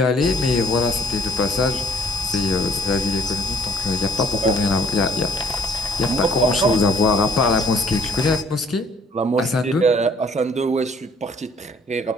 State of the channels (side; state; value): both; normal; correlation 0.62